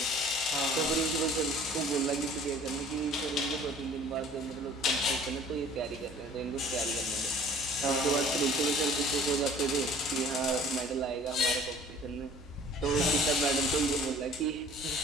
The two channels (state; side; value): noise; right; hum, 21 dB below the sound